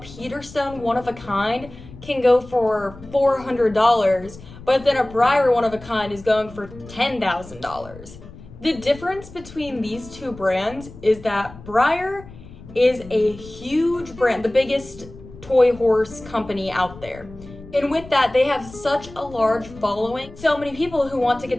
one of a kind can go for $400, but then a Breyer one-of-a-kind is going for $10,000. The difference between these two brands is that Breyer is a huge brand, the biggest toy horse company out there. And with that, they have such a large following, so many people who want to get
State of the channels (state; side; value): noise; left; rumble, 18 dB below the sound